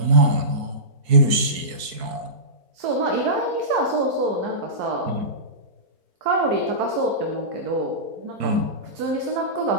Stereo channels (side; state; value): left; late; 4.6 ms